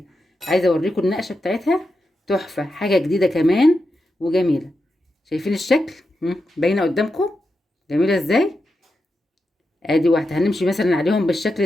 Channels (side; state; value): both; normal; correlation 0.88